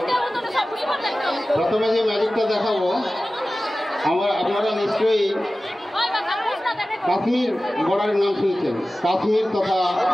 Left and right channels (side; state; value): both; normal; correlation 0.96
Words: প্রথমে যে ম্যাজিকটা দেখাবো আপনারা নিশ্চয়ই কাশ্মীর বর্ডারের নাম শুনছেন। কাশ্মীর তথা